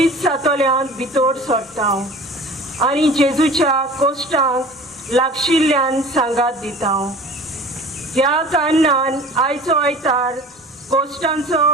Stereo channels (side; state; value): both; normal; correlation 0.42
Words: सातोल्यांत भितर सरता आनी जेजूच्या कोश्टांक लागशिल्ल्यान सांगात दिता. ह्या कारणान आयचो आयतार कोश्टांचो